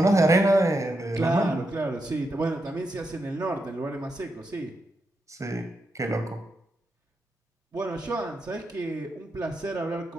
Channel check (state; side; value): normal; both; correlation 0.84